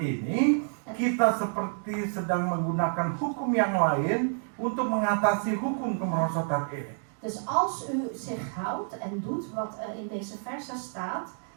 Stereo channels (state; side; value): silent; left; 59 dB below the other